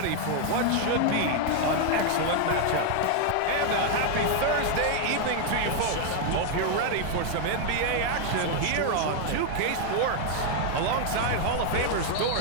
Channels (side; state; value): both; different; correlation 0.00